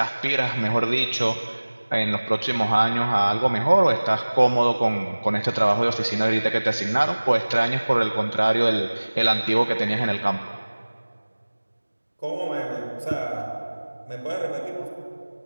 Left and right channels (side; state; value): both; inverted; correlation -1.00